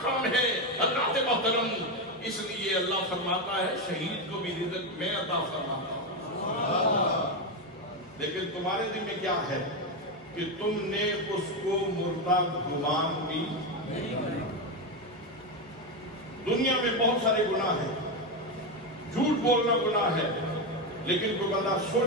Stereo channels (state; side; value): noise; left; hum, 29 dB below the sound